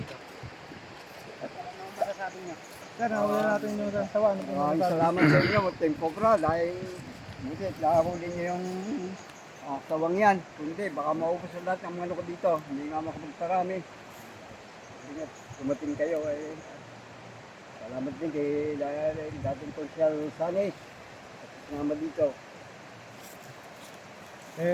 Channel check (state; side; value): identical; both; correlation 1.00